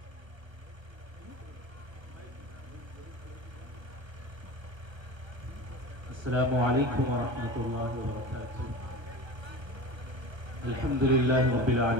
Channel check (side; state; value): left; late; 1.3 ms